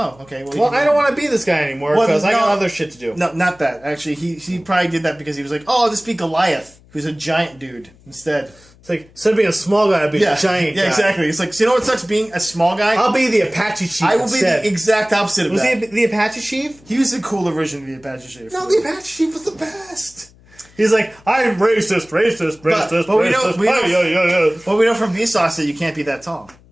okay. Well, I don't want to be this guy anymore because I got other shit to do. No, not that. Actually, he probably did that because he was like, oh, I'll just be Goliath, who's a giant dude instead. It's like, instead of being a small guy, I'll be a giant guy. Yeah, exactly. It's like, so you know what sucks being a small guy? I'll be the Apache chief. I will be the exact opposite of that. Was he the Apache chief? He was the cooler version of the Apache chief. No, the Apache chief was the best. He's like, I'm racist. But we know from Vsauce that you can't be that tall.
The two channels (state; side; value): noise; left; hum, 27 dB below the sound